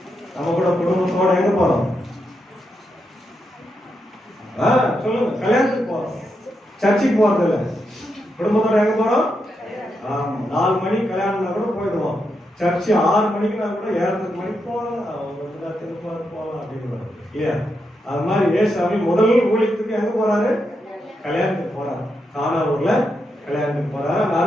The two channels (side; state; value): both; normal; correlation 0.84